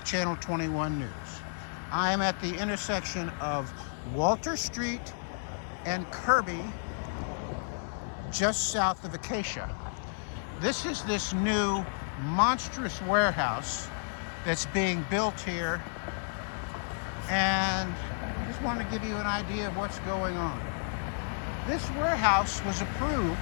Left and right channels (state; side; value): silent; right; 57 dB below the other